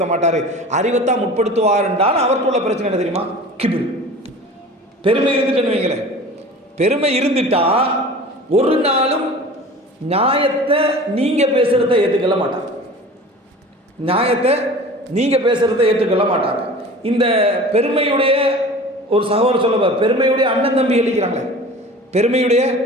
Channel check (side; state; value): both; normal; correlation 0.40